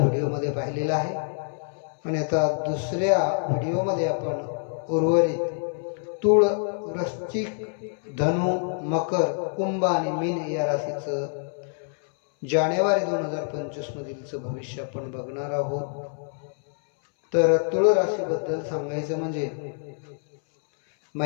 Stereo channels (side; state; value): right; silent; 61 dB below the other